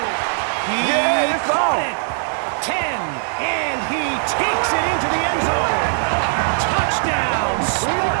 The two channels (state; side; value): silent; left; 63 dB below the other